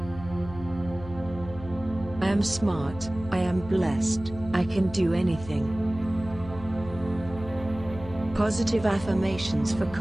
I am smart, I am blessed, I can do anything. Positive affirmations for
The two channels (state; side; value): noise; left; hum, 14 dB below the sound